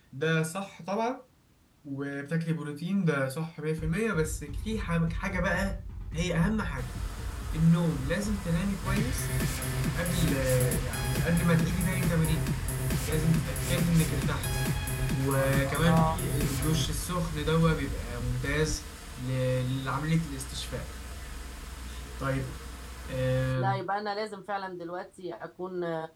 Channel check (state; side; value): identical; both; correlation 1.00